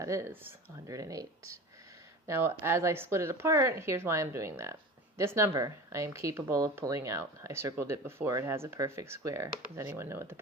is, 108. Now, as I split it apart, here's why I'm doing that. This number, I am capable of pulling out. I circled it before. It has a perfect square. Does anyone know what the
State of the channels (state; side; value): normal; both; correlation 0.34